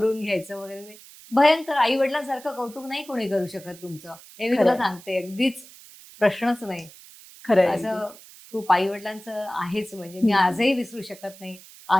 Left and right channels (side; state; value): right; noise; hiss, 20 dB below the sound